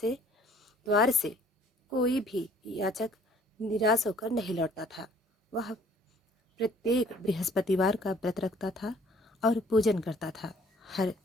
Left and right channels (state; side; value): normal; both; correlation 0.56